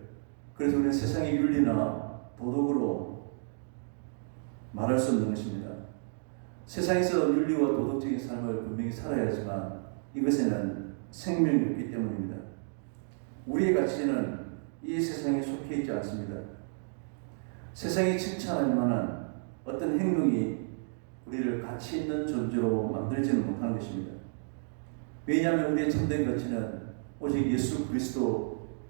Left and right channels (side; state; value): left; silent; digital silence